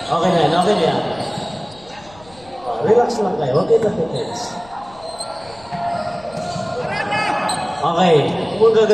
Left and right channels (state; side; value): noise; left; rumble, 25 dB below the sound